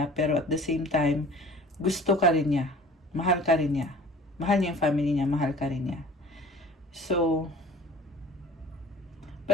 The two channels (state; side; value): normal; both; correlation 0.46